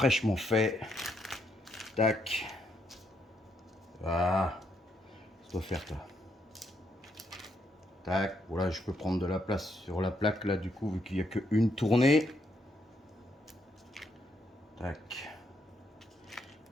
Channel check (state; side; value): normal; both; correlation 0.76